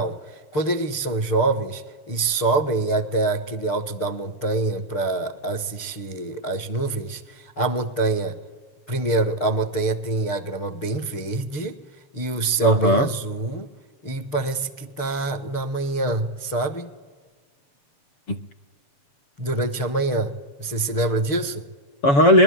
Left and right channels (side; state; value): right; late; 6.7 ms